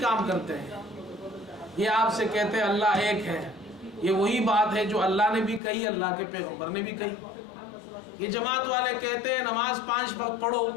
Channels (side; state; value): right; drops out; at 5.6 s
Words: کرتے ہیں، یہ آپ سے کہتے ہیں اللہ ایک ہے، یہ وہی بات ہے جو اللہ نے بھی کہی، اللہ کے پیغمبر نے بھی کہی۔ یہ جماعت والے کہتے ہیں نماز 5 وقت پڑھو،